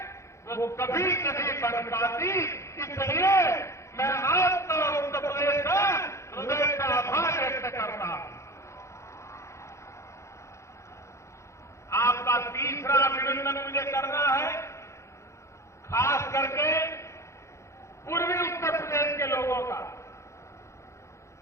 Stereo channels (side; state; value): right; late; 0.14 ms